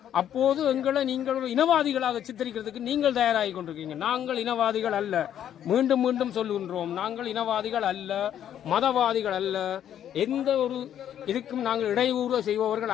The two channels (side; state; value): right; quieter; 10.2 dB